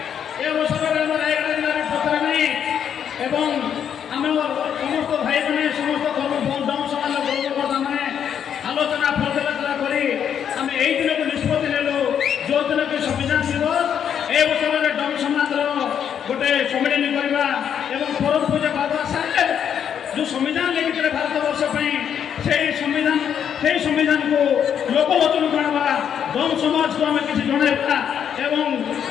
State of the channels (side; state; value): right; quieter; 8.5 dB